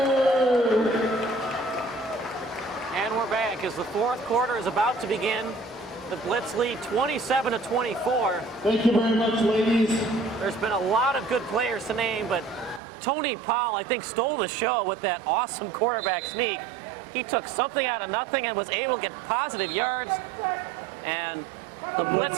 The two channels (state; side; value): drops out; left; at 12.8 s